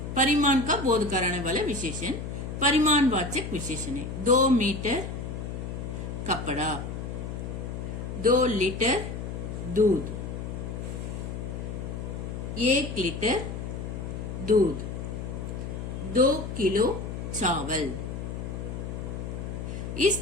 परिमाण का बोध कराने वाला विशेषण परिमाणवाचक विशेषण है। 2 मीटर कपड़ा, 2 लीटर दूध, 1 लीटर दूध, 2 किलो चावल।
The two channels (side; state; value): left; noise; hum, 6 dB below the sound